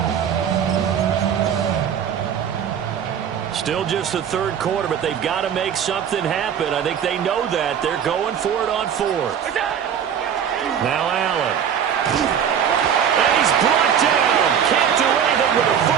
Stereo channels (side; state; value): left; quieter; 8.4 dB